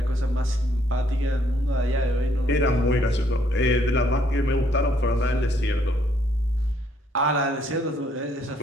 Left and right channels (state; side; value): normal; both; correlation 0.68